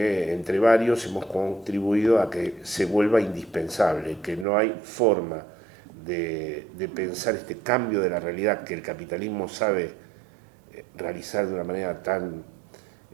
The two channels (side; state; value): left; drops out; at 4.5 s